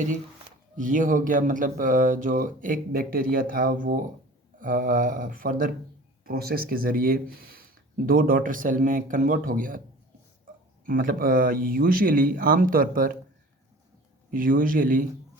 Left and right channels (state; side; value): normal; both; correlation 0.43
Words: जी। ये हो गया मतलब जो एक बैक्टीरिया था वो फर्दर प्रोसेस के ज़रिए दो डॉटर सेल में कन्वर्ट हो गया। मतलब usually